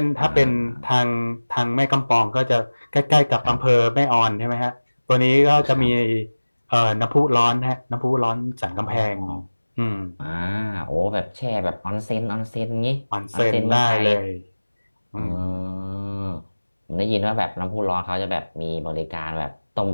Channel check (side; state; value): both; inverted; correlation -1.00